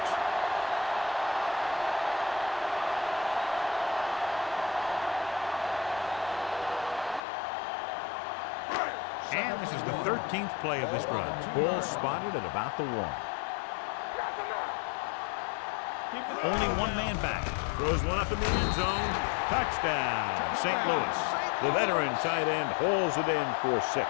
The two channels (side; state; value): right; drops out; at 7.2 s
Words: And this is the 13th play of this run. Ball spotted at about the 1. Only one man back. Throws one up in the end zone. Touchdown, St. Louis. The veteran tight end hauls it in for 6.